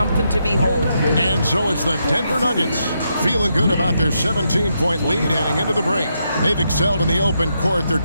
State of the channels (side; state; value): both; inverted; correlation -0.81